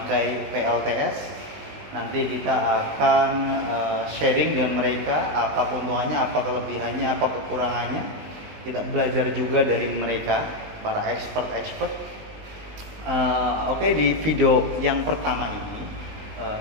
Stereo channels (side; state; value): left; late; 19 ms